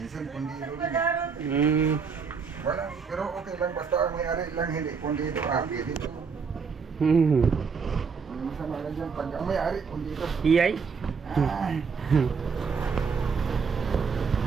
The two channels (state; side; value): quieter; left; 5.6 dB